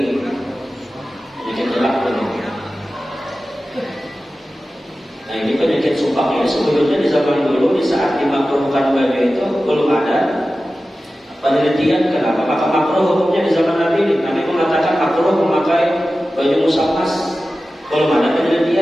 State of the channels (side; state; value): both; normal; correlation 0.95